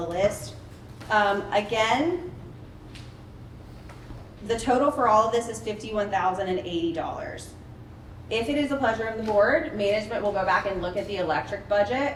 list. Again, the total for all of this is $51,080. If it is the pleasure of the board, management will go back and look at the electric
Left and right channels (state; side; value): identical; both; correlation 1.00